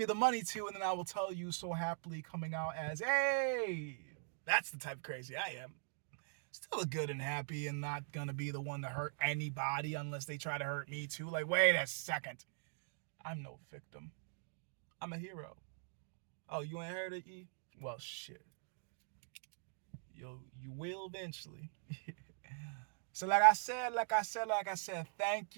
the money to, and then I will tell you so happily coming out as, hey, that's the type of crazy I am. Still good and happy and not gonna be the one to hurt anybody unless they try to hurt me too. Like, wait a second. I'm no victim. I'm a hero. Oh, you ain't heard of E? Well, shit. You will eventually. So like I said, thank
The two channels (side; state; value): left; silent; digital silence